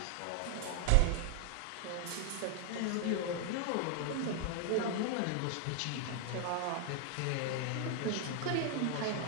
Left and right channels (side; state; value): both; different; correlation 0.00